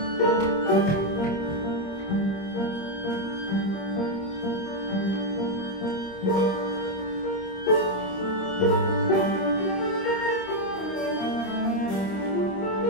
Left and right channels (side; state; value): right; late; 26 ms